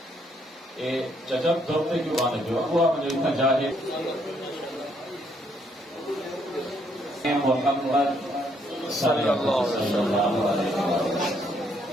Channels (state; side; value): normal; both; correlation 0.71